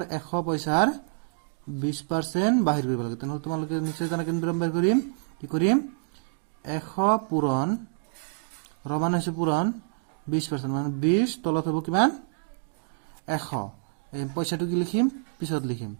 100 পইচাৰ 20% বাহিৰ কৰিব লাগে তেনেহ'লে তোমালোকে নিশ্চয় জানা কেনেদৰে বাহিৰ কৰিম কি কৰিম 100 পূৰণ ৰমান হৈছে পূৰণ 20% মানে 20 তলত হ'ব কিমান 100 এই পইচাটো কি লিখিম পিছত লিখিম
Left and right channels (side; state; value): left; silent; 59 dB below the other